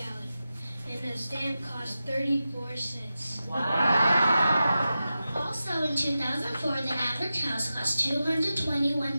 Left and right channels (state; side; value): inverted; both; correlation -0.92